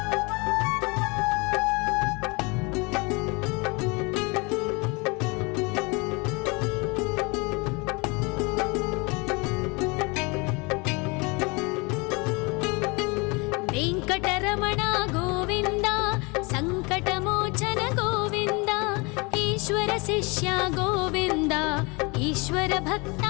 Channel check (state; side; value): quieter; right; 28.4 dB